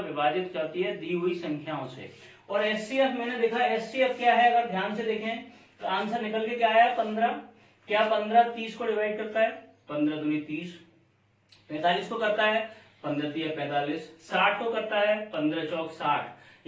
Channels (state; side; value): identical; both; correlation 1.00